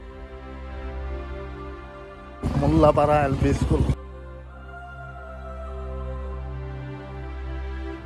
মোল্লাপাৰা LP school.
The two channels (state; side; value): identical; both; correlation 1.00